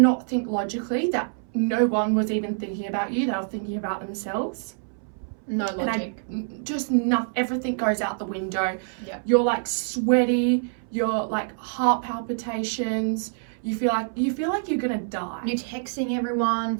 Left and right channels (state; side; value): silent; left; 61 dB below the other